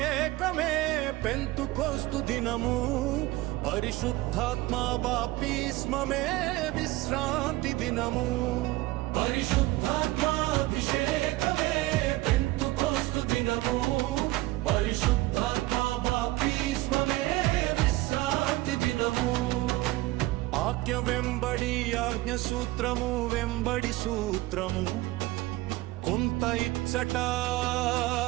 పెంతుకోస్తు దినము, పరిశుద్ధాత్మ బాప్తిస్మమే విశ్రాంతి దినము. పరిశుద్ధాత్మాభిషేకమే పెంతుకోస్తు దినము, పరిశుద్ధాత్మ బాప్తిస్మమే విశ్రాంతి దినము. ఆజ్ఞ వెంబడి ఆజ్ఞ సూత్రము వెంబడి సూత్రము, కొంత ఇచ్చట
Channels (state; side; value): quieter; left; 18.7 dB